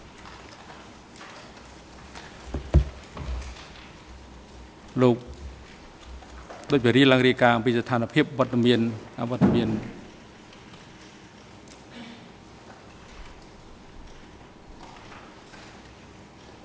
លោកដូចជារៀបឡើងរាយការណ៍អំពីស្ថានភាពវត្តមាន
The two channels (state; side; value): identical; both; correlation 1.00